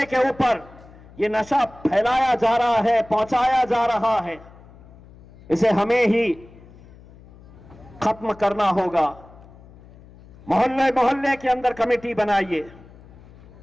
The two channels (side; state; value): left; noise; hum, 22 dB below the sound